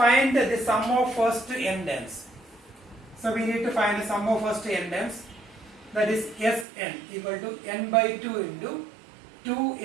the sum of first n terms. So we need to find the sum of first n terms, that is Sn equal to n by 2 into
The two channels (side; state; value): left; drops out; at 6.7 s